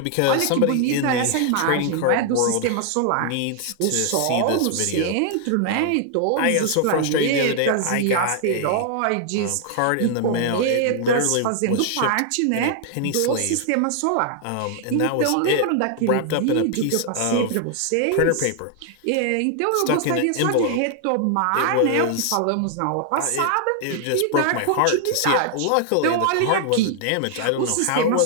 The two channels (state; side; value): different; both; correlation 0.00